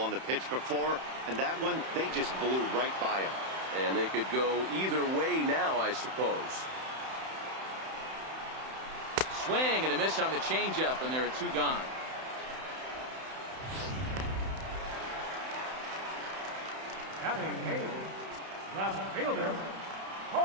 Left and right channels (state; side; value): late; left; 31 ms